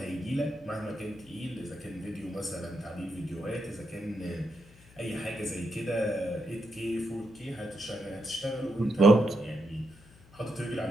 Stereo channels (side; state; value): left; noise; hum, 24 dB below the sound